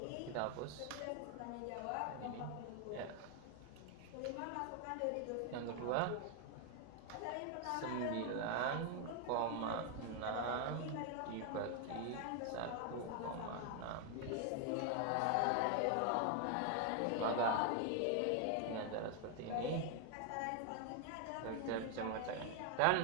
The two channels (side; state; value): both; different; correlation 0.00